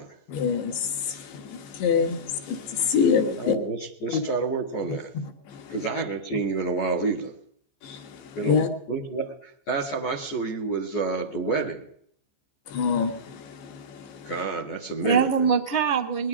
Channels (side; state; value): right; late; 14 ms